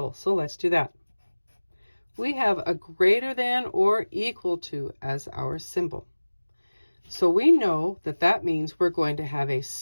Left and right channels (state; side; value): inverted; both; correlation -1.00